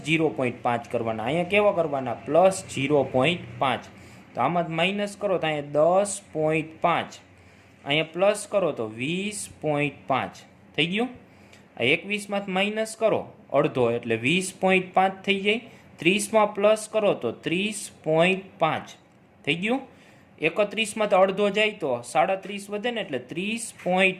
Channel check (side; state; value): both; identical; correlation 1.00